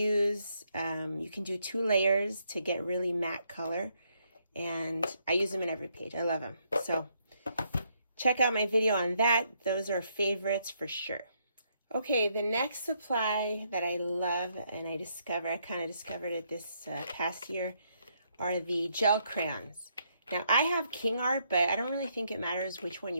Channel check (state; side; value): inverted; both; correlation -0.74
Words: You can do 2 layers to get really matte color. And I use them in every page. I love them. So check out my video on that. Those are favorites for sure. Okay, the next supply that I love and I kind of discovered it this past year are the gel crayons. Now, I have King Art, but I don't really think it matters which one